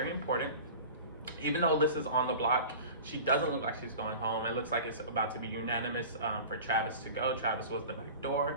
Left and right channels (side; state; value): both; inverted; correlation -0.37